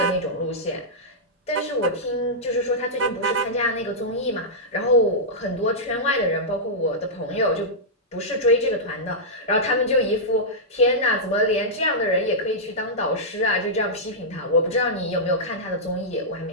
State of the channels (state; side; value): normal; both; correlation -0.11